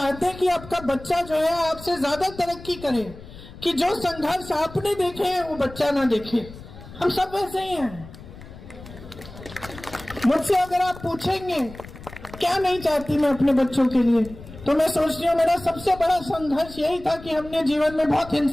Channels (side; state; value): left; noise; rumble, 16 dB below the sound